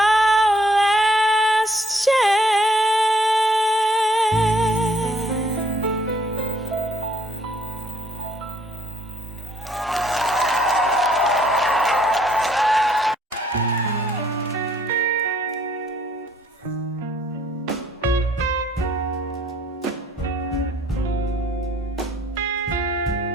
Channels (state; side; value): normal; both; correlation 0.65